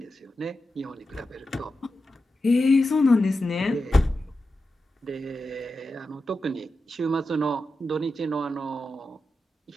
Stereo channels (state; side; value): normal; both; correlation 0.90